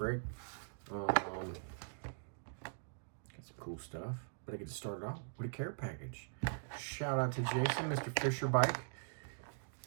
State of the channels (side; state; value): left; silent; digital silence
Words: Got some cool stuff, but I get to start it out with a care package. Shout out to Jason, Mr. Fisher Bike.